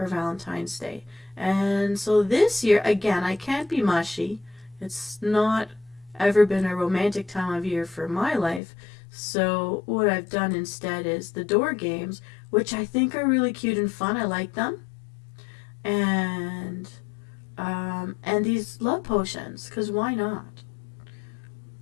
Valentine's Day. And so this year, again, I can't be mushy. It's not ever been a romantic time of year for my life. So what I've done instead is the door games, which I think are really cute and fun. I like them. And these love potions, because why not?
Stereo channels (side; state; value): right; drops out; at 8.6 s